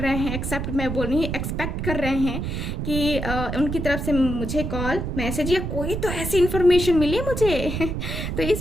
हैं, एक्सेप्ट मैं बोल रही हूँ, एक्सपेक्ट कर रहे हैं कि उनकी तरफ से मुझे कॉल मैसेज या कोई तो ऐसी इन्फॉर्मेशन मिले मुझे। तो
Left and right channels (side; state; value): right; noise; rumble, 3 dB below the sound